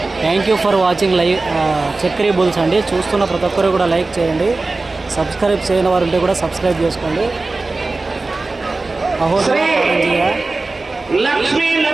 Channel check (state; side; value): quieter; left; 3.4 dB